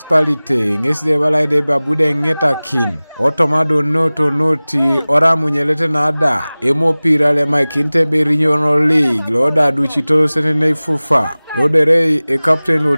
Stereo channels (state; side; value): inverted; both; correlation -0.99